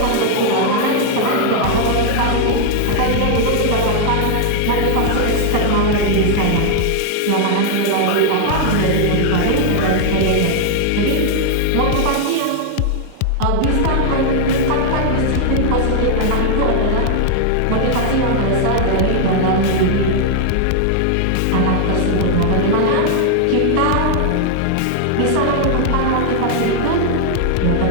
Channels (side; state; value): both; different; correlation 0.00